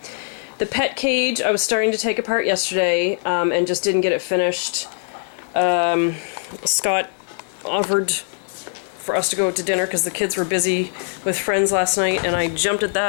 The pet cage I was starting to take apart yesterday and just didn't get it finished. Scott offered for us to go to dinner because the kids were busy with friends last night, and I jumped at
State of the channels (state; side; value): silent; right; digital silence